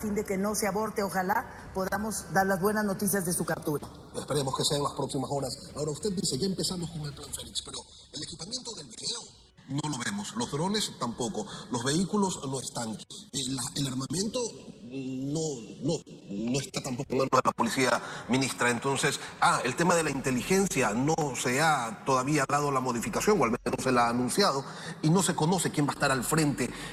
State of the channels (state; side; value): identical; both; correlation 1.00